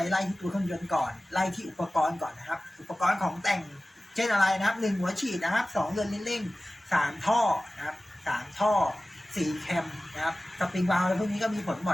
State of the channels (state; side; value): normal; both; correlation 0.97